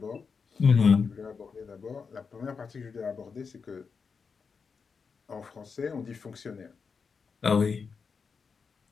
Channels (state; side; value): quieter; right; 5.5 dB